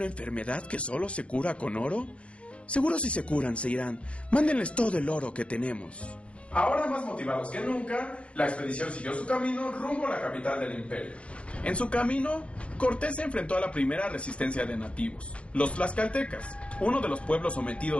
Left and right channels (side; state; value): right; late; 0.061 ms